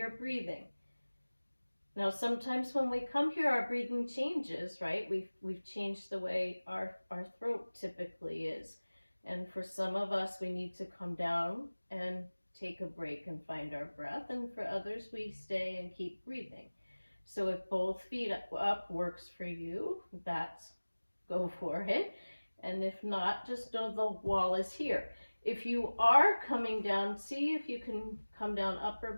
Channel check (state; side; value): inverted; both; correlation -1.00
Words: breathing. Now, sometimes when we come here, our breathing changes, right? We've changed the way our throat typically is. And for some of us, we need to come down and take a break and find our breath. And for others, we stay and keep breathing. So if both feet up works for you, go for it. And if not, just know the wall is here. If you are coming down, see if you can come down upper